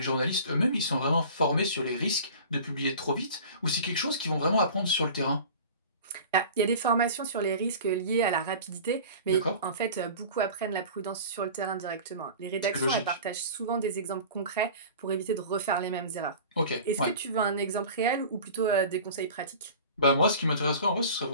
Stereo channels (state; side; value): inverted; both; correlation -0.40